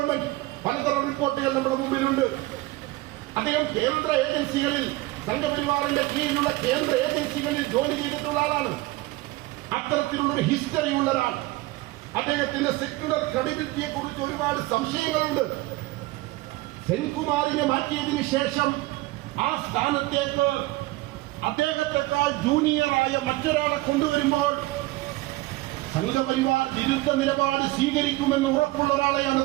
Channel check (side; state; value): left; quieter; 19.7 dB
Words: പലതരം റിപ്പോർട്ടുകൾ നമ്മുടെ മുമ്പിലുണ്ട്. അദ്ദേഹം കേന്ദ്ര ഏജൻസികളിൽ, സംഘപരിവാറിന്റെ കീഴിലുള്ള കേന്ദ്ര ഏജൻസികളിൽ ജോലി ചെയ്തിട്ടുള്ള ആളാണ്. അത്തരത്തിലുള്ളൊരു ഹിസ്റ്ററി ഉള്ള ഒരാൾ. അദ്ദേഹത്തിന്റെ സെക്യുലർ ക്രെഡിബിലിറ്റിയെ കുറിച്ച് ഒരുപാട് സംശയങ്ങളുണ്ട്. സെൻകുമാറിനെ മാറ്റിയതിനു ശേഷം ആ സ്ഥാനത്തേക്ക് അദ്ദേഹത്തെക്കാൾ ജൂനിയറായ മറ്റൊരാളെ കൊണ്ടുവരുമ്പോൾ സംഘപരിവാർ വിരുദ്ധ നിലപാട് സ്വീകരിക്കുമെന്ന് ഉറപ്പുള്ള ഒരാളെയാണ്